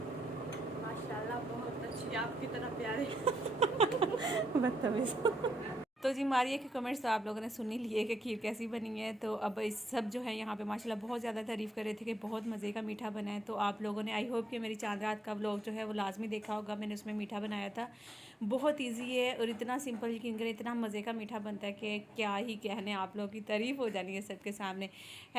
माशाल्लाह बहुत अच्छी, आपकी तरह प्यारे। बदतमीज़। तो जी मारिया के कमेंट्स तो आप लोगों ने सुन ही लिए कि खीर कैसी बनी है। तो अब इस सब जो है यहाँ पे माशाल्लाह बहुत ज़्यादा तारीफ़ कर रहे थे कि बहुत मज़े का मीठा बना है। तो आप लोगों ने आई होप कि मेरी चांद रात का व्लॉग जो है वो लाजमी देखा होगा। मैंने उसमें मीठा बनाया था, बहुत ईजी है और इतना सिंपल, यकीन करें इतना मज़े का मीठा बनता है कि क्या ही कहने, आप लोगों की तारीफ़ हो जानी है सबके सामने।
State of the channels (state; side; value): normal; both; correlation 0.82